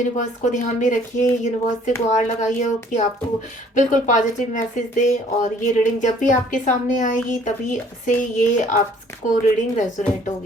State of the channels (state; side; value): normal; both; correlation 0.57